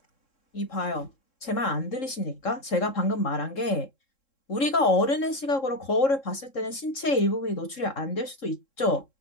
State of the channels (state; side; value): late; right; 3.7 ms